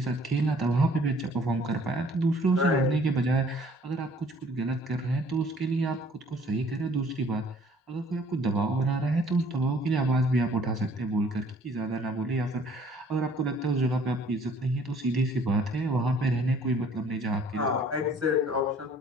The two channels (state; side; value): normal; both; correlation 0.56